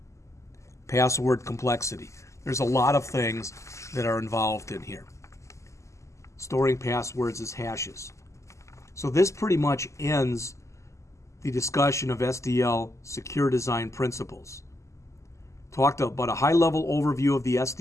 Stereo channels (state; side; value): late; right; 0.14 ms